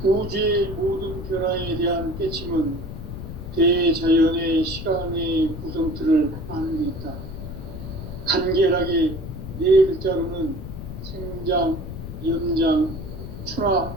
우주의 모든 변화에 대한 깨침은 대자연의 시간의 구성틀을 아는 데 있다. 간결하게 네 글자로는 생장, 연장, 추나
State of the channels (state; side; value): noise; left; rumble, 9 dB below the sound